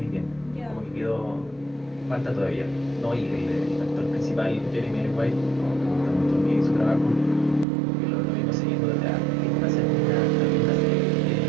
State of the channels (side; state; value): left; drops out; at 7.7 s